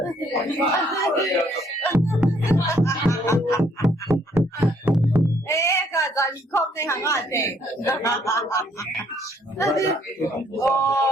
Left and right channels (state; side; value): normal; both; correlation 0.66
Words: 哎，个在你空内行啊，对。哦。